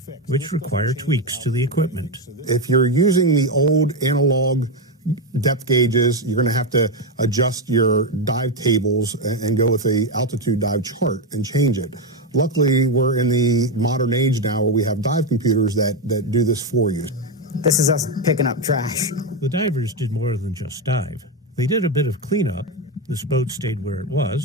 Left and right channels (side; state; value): both; normal; correlation 0.09